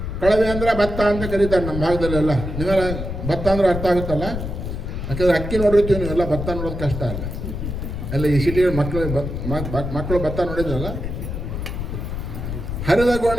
ಕಳವೆ ಅಂದರೆ ಭತ್ತ ಅಂತ ಕರೀತಾರೆ ನಮ್ಮ ಭಾಗದಲ್ಲೆಲ್ಲ. ನೀವೆಲ್ಲ ಭತ್ತ ಅಂದ್ರೆ ಅರ್ಥ ಆಗುತ್ತಲ್ಲ, ಯಾಕಂದರೆ ಅಕ್ಕಿ ನೋಡಿರ್ತೀವಿ, ನೀವೆಲ್ಲ ಭತ್ತ ನೋಡೋದು ಕಷ್ಟ ಅಲ್ಲ. ಎಲ್ಲ ಈ ಸಿಟಿಗಳ ಮಕ್ಕಳು ಭತ್ತ ನೋಡಿದ್ರಲ್ಲ. ಹರಿದ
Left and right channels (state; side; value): noise; left; rumble, 5 dB below the sound